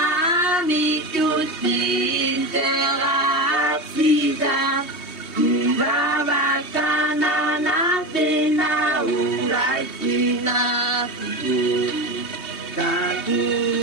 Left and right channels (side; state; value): right; late; 3.2 ms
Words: mitutin terasida Ibabakana natena urai sinaku